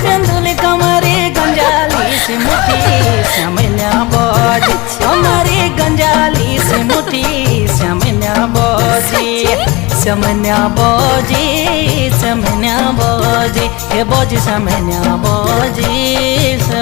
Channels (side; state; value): right; quieter; 23.6 dB